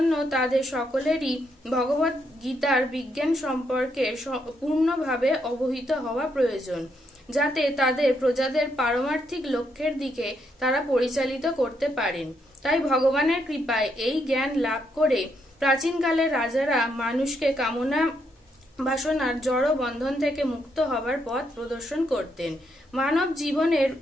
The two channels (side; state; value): both; normal; correlation 0.77